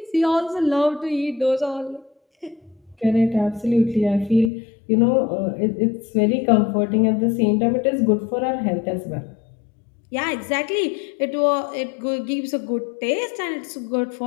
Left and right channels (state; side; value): drops out; right; at 4.5 s